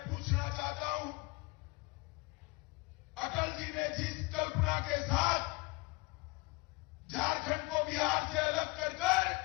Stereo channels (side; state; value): right; quieter; 25.3 dB